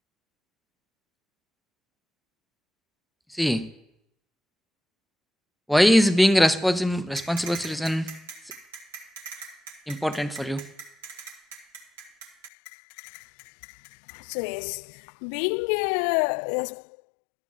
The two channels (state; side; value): drops out; right; at 12.5 s